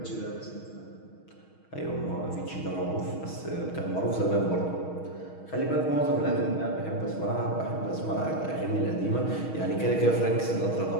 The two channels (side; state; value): right; late; 6.4 ms